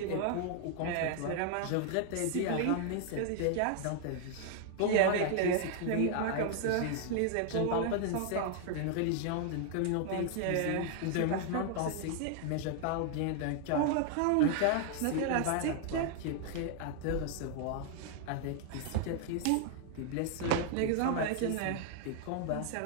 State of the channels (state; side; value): different; both; correlation 0.00